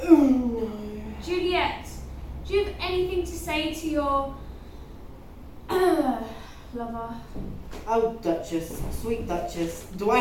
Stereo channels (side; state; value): both; identical; correlation 1.00